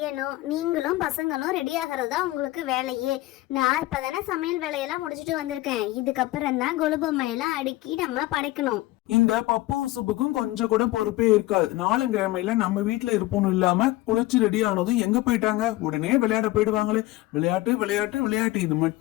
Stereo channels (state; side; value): quieter; right; 18.0 dB